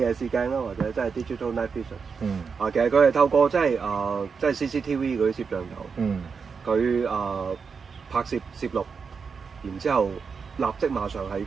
視鏡啦，或者即係 digital night vision。其實佢係透過即係 CCTV 嗰啲攝像頭，佢拍攝錄，然之後立即馬上喺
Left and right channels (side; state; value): left; quieter; 5.6 dB